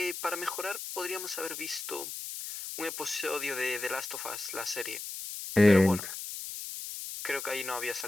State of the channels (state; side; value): noise; left; hiss, 7 dB below the sound